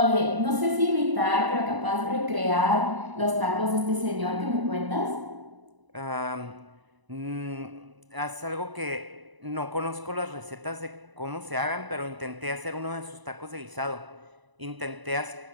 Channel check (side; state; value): left; late; 1.0 ms